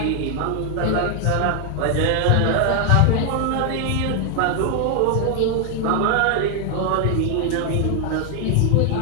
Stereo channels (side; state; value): both; different; correlation 0.00